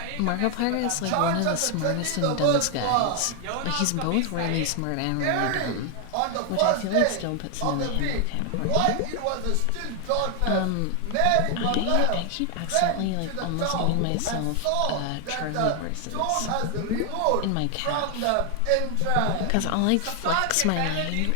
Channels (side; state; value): both; different; correlation 0.00